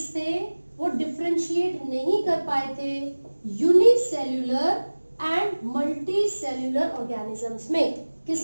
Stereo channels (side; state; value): both; inverted; correlation -1.00